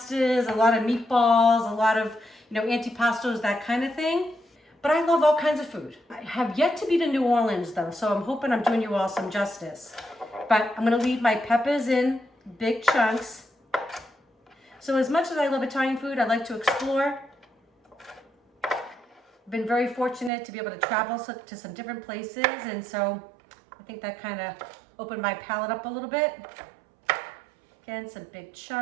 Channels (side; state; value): left; drops out; at 20.3 s